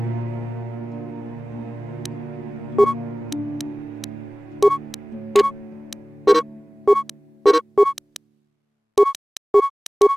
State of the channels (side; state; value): both; normal; correlation 0.97